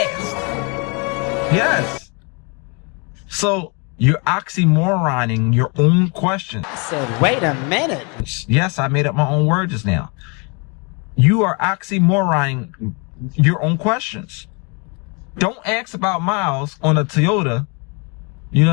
Yes. So you're oxymoroning your own questions. I said, wait a minute. Yes, I made up my own word just now. You are oxymoroning your own questions. Don't ask about miles on a Toyota. You know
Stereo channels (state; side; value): quieter; right; 32.6 dB